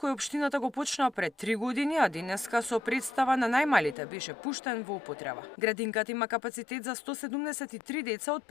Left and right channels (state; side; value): drops out; right; at 4.0 s